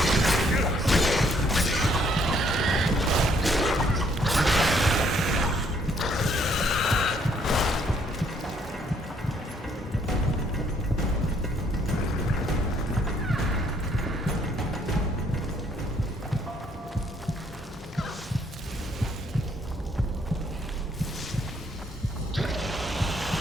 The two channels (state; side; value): normal; both; correlation 0.66